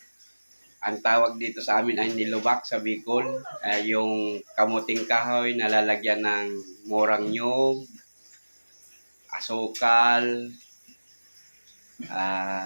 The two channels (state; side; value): inverted; both; correlation -1.00